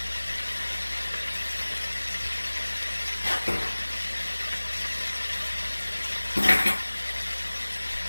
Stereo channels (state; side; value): inverted; both; correlation -1.00